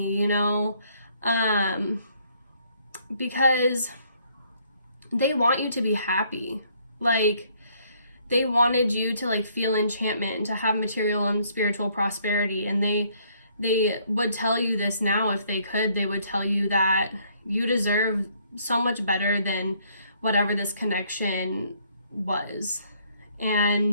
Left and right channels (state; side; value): inverted; both; correlation -0.66